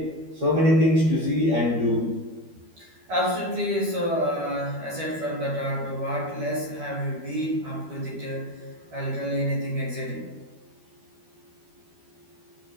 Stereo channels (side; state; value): left; late; 12 ms